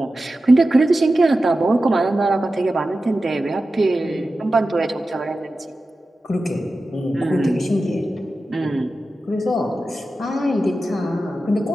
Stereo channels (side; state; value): both; normal; correlation 0.93